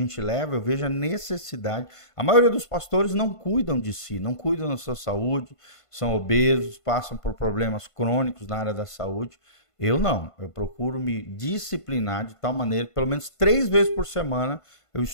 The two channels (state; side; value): late; right; 1.5 ms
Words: leva, eu vejo a necessidade. A maioria dos pastores não cuidam de si, não cuidam da sua saúde, são obesos, passam por problemas crônicos na área da saúde. Eu não, eu procuro me disciplinar de tal maneira que pelo menos 3 vezes por semana eu